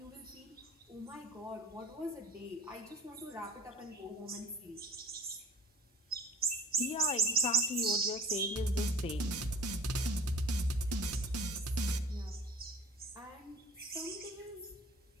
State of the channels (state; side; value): normal; both; correlation 0.44